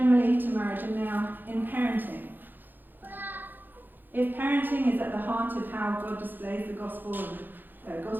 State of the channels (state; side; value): late; left; 0.090 ms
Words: to marriage and now in parenting. If parenting is at the heart of how God displays the gospel and